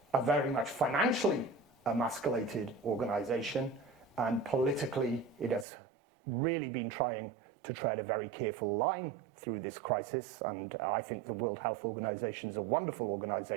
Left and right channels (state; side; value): drops out; left; at 5.7 s